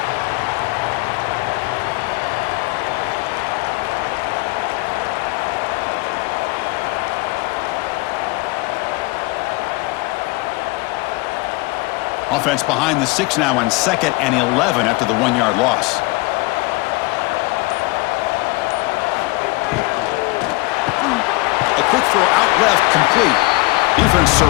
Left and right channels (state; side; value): quieter; right; 23.8 dB